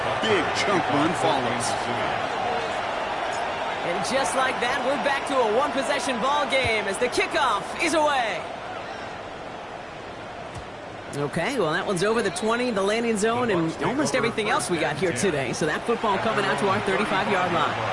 big chunk run follows. And just like that, we're back to a one-possession ball game as the kickoff is away. Okay, well, that one's over the 20, the landing zone, and almost everything else we got here today. So that football coming out to our 35-yard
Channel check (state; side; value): identical; both; correlation 1.00